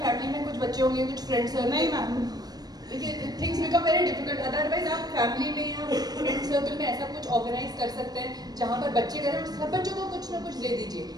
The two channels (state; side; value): late; left; 0.19 ms